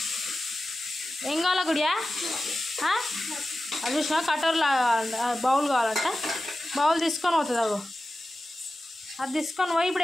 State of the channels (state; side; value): normal; both; correlation 0.94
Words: ఏం కావాలా గుడియా? అది చూసినా కటోర్లా బౌల్ కావాలంట. బౌల్ తీసుకొని పోతుంది అగో. అది తీసుకొని పోయి